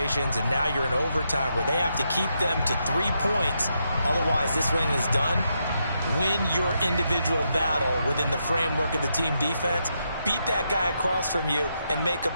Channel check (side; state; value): both; inverted; correlation -0.81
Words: and now you're in overtime where they have to keep them to 3 points. Otherwise, this win is done. Win your individual battle within the framework of the team defense. Beat that guy across from you and make a